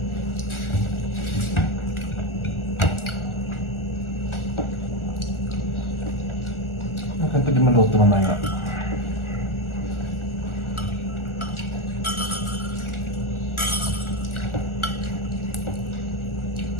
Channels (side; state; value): right; late; 1.4 ms